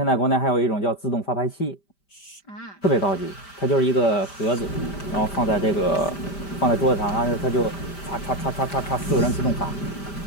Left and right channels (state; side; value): late; right; 5.1 ms